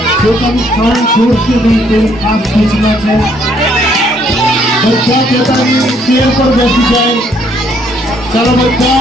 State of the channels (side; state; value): both; normal; correlation 0.67